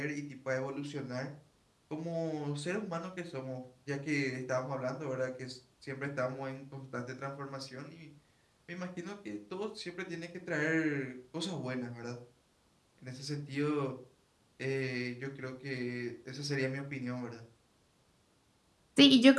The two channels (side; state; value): both; identical; correlation 1.00